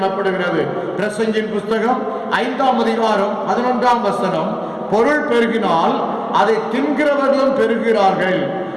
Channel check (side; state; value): both; identical; correlation 1.00